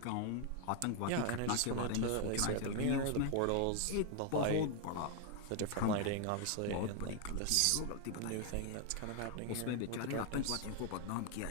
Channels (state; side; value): different; both; correlation 0.01